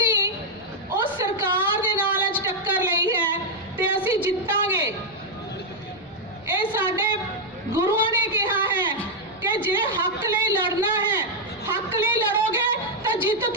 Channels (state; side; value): normal; both; correlation -0.02